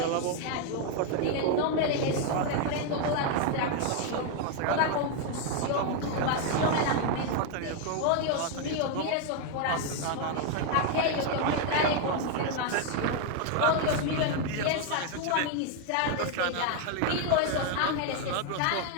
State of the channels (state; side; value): different; both; correlation 0.01